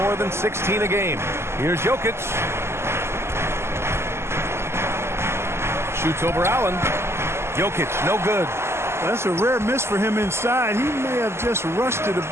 than 16 a game. Here's Jokic. Shoots over Allen. Jokic, no good. That's a rare miss for him inside. He may have just rushed it a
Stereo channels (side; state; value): left; late; 0.12 ms